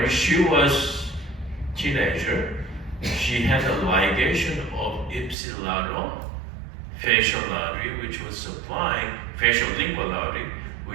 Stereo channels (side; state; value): left; drops out; at 5.4 s